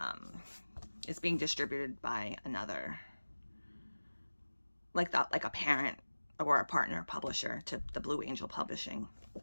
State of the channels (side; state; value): both; inverted; correlation -1.00